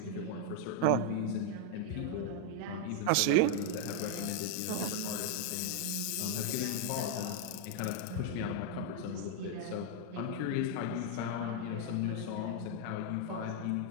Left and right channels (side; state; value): both; different; correlation 0.00